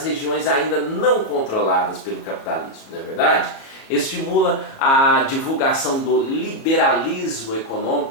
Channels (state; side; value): late; right; 36 ms